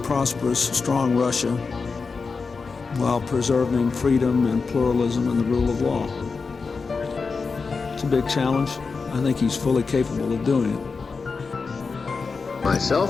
prosperous, strong Russia while preserving freedom and pluralism and the rule of law. It's a big challenge. I think he's fully capable of doing it.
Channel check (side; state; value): right; quieter; 4.7 dB